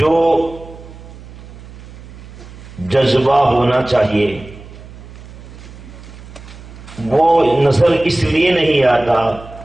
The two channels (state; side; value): noise; right; hum, 17 dB below the sound